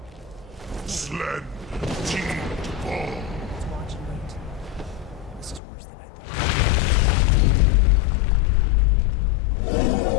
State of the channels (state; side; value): drops out; right; at 5.6 s